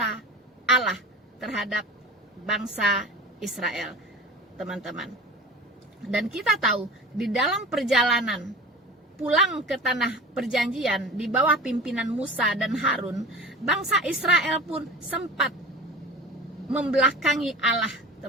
Allah terhadap bangsa Israel, teman-teman. Dan kita tahu di dalam perjalanan pulang ke tanah perjanjian di bawah pimpinan Musa dan Harun, bangsa Israel pun sempat membelakangi Allah,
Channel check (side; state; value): both; normal; correlation 0.34